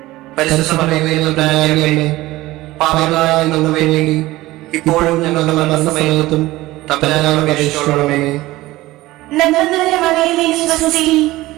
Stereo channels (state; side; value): quieter; left; 18.0 dB